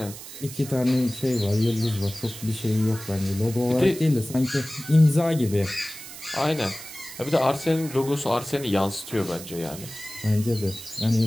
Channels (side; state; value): right; noise; hiss, 13 dB below the sound